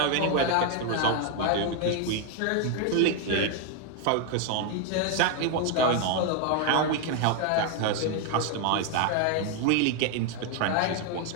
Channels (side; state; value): both; different; correlation 0.01